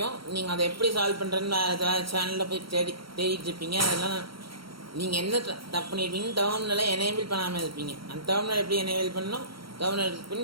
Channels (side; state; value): left; late; 0.74 ms